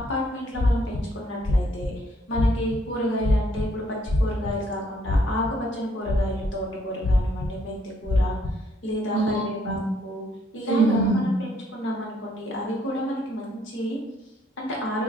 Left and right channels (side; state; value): both; normal; correlation 0.68